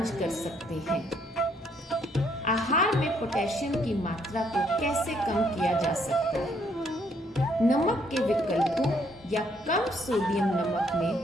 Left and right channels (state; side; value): normal; both; correlation 0.69